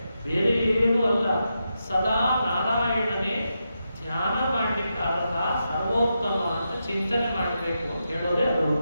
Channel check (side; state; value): both; inverted; correlation -0.86